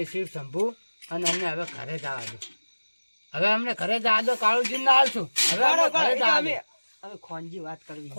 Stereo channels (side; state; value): both; inverted; correlation -1.00